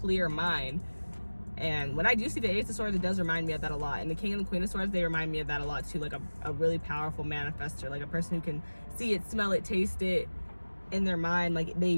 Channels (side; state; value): both; inverted; correlation -1.00